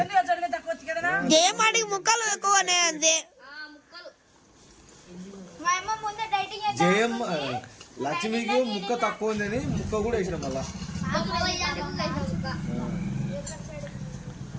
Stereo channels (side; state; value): both; identical; correlation 1.00